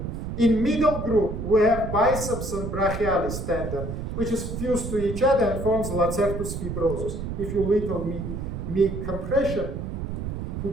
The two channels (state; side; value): noise; right; rumble, 5 dB below the sound